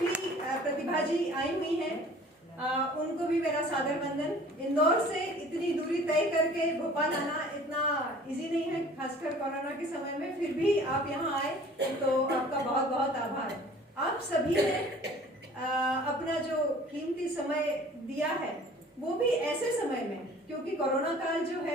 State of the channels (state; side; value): normal; both; correlation 0.48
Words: प्रतिभा जी आई हुई हैं, उनको भी मेरा सादर वंदन। इंदौर से इतनी दूरी तय करके भोपाल आना इतना इजी नहीं है, खासकर कोरोना के समय में, फिर भी आप यहाँ आए तो आपका बहुत बहुत आभार। आप सभी ने अपना जो कीमती समय दिया है वो भी ऐसे समय में, क्योंकि कोरोना काल जो